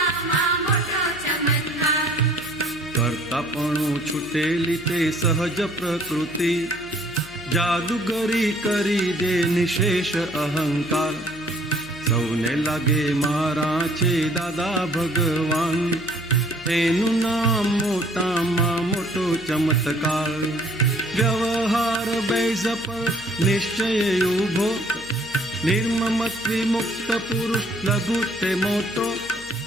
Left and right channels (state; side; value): noise; left; hum, 21 dB below the sound